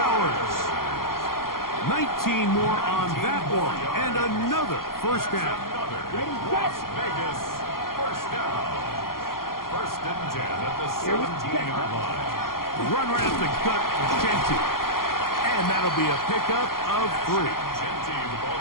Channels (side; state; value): right; late; 0.92 ms